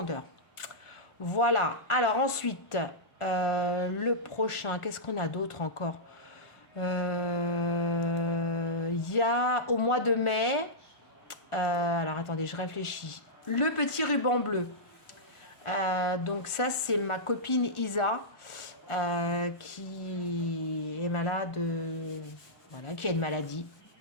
Voilà, alors ensuite... le prochain, qu'est-ce qu'on a d'autre encore? Il y a au mois de mai, alors attendez, je réfléchis. Le petit ruban bleu. Donc ça, c'est ma copine Isa qui est malade, voilà, qui a une maladie.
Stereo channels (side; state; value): right; late; 1.4 ms